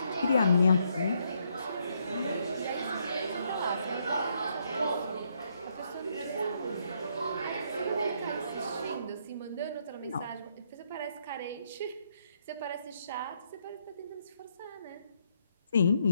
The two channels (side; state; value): both; inverted; correlation -0.74